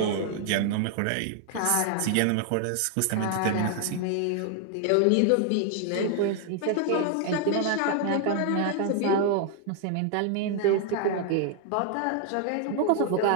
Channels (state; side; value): different; both; correlation 0.00